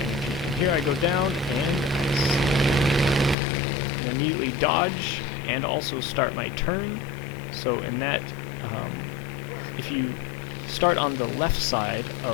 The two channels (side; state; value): right; drops out; at 3.4 s